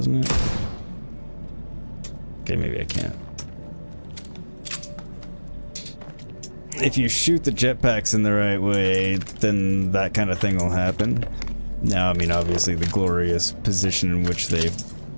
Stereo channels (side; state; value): both; inverted; correlation -1.00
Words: it? Okay, maybe I can't. If you shoot the jetpacks in the right way, then that kind of thing will happen. Now, I mean, obviously the glorious position in which they